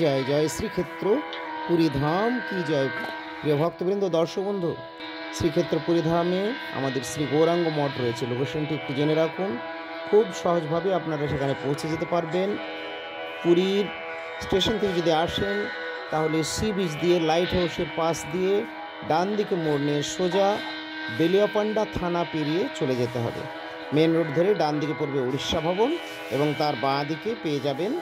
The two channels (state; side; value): identical; both; correlation 1.00